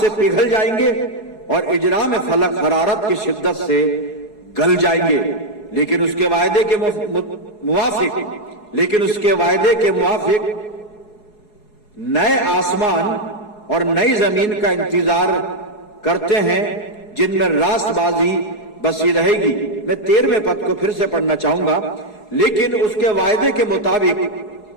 पिघल जाएंगे और इजरा में फलक हरारत की शिद्दत से गल जाएंगे। लेकिन उसके वायदे के मुवाफिक नए आसमान और नई जमीन का इंतजार करते हैं, जिनमें रास्तबाजी बसी रहेगी। मैं 13वें पद को फिर से पढ़ना चाहूंगा। लेकिन उसके वायदे के मुताबिक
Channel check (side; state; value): right; late; 4.7 ms